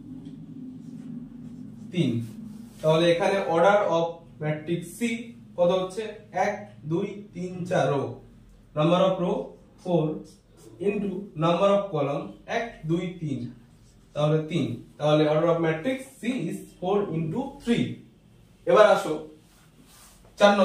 3। তাহলে এখানে অর্ডার অফ ম্যাট্রিক্স সি কত হচ্ছে 1 2 3 4 row, number of row 4 into number of column 1 2 3, তাহলে 3। তাহলে order of matrix C is 4 into 3। এবার আসো 4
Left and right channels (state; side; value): identical; both; correlation 1.00